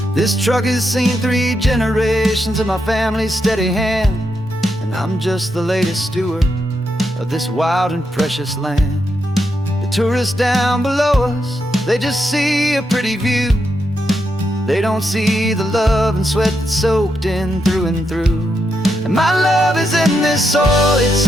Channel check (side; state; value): both; normal; correlation 0.82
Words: This truck has seen 3 generations of my family's steady hand, and I'm just the latest steward of this wild and precious land. The tourists down below us, they just see a pretty view. They don't see the love and sweat that's soaked in through and through. And my love is in this soil, it's